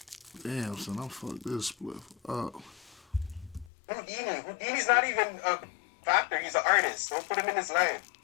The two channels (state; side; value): drops out; right; at 3.7 s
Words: Damn, son, I'm fucked this split up. Houdini's not even a factor. He's an artist. Don't put him in his life.